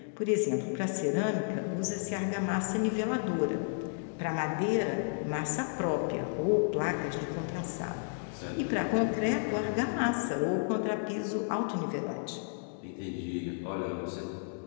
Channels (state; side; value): silent; right; digital silence